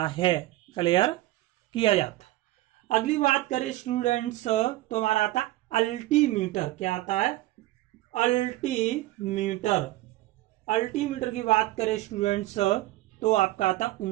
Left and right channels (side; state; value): left; quieter; 17.0 dB